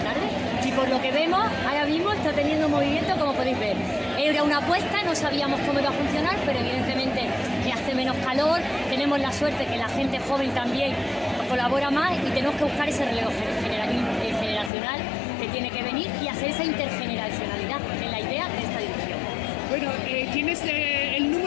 Y por lo que vemos, ahora mismo está teniendo movimiento, como podéis ver. Era una apuesta, no sabíamos cómo iba a funcionar, pero evidentemente hace menos calor, tenemos la suerte que la gente joven también colabora más y tenemos que buscar ese relevo generacional que tiene que venir y hacer esa intergeneracionalidad, que es la idea de esta edición. Bueno, ¿tienes el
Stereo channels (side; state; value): right; drops out; at 14.7 s